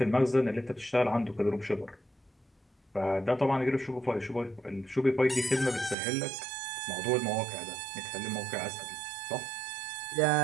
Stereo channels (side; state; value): left; drops out; at 6.0 s